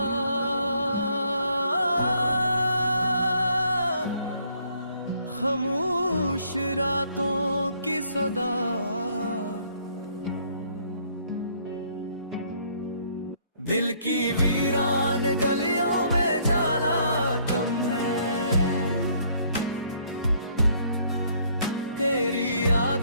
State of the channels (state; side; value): inverted; both; correlation -0.65